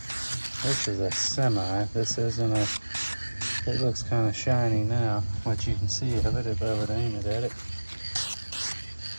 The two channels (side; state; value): both; inverted; correlation -1.00